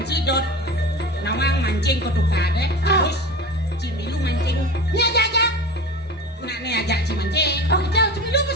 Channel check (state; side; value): normal; both; correlation 0.31